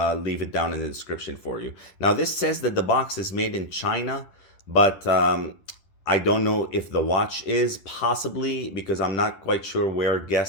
leave it down in the description for you. Now this says that the box is made in China, but I don't know if the watch is, possibly, because I'm not quite sure where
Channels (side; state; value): right; late; 11 ms